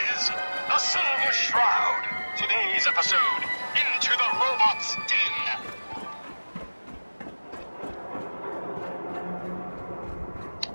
is the Silver Shroud. Today's episode, Into the Robot's Den.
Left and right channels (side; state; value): both; inverted; correlation -1.00